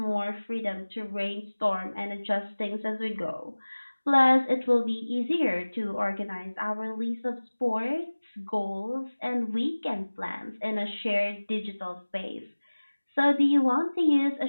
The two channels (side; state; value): both; inverted; correlation -1.00